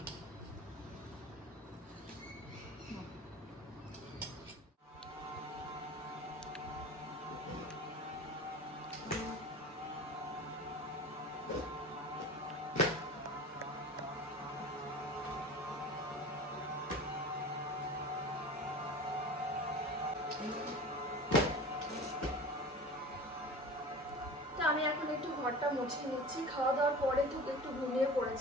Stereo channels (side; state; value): both; normal; correlation 0.36